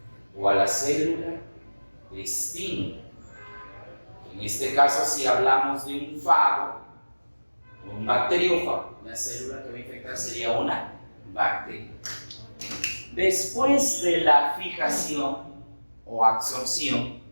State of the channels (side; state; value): both; inverted; correlation -1.00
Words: o a la célula destino. En este caso, si hablamos de un fago o un bacteriófago, la célula que va a infectar sería una bacteria. Después de la fijación o absorción,